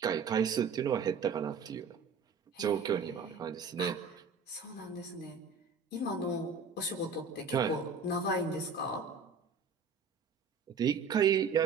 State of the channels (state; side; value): quieter; left; 5.2 dB